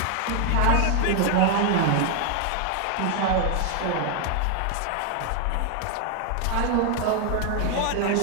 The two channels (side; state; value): both; different; correlation 0.00